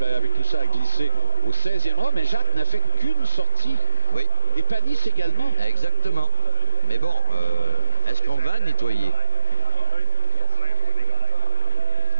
avec tout ça, a glissé au 16e rang. Mais Jacques n'a fait qu'une sortie. Oui. Et Panis également. Exactement. Mais bon, est-ce qu'on va nettoyer?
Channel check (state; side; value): inverted; both; correlation -1.00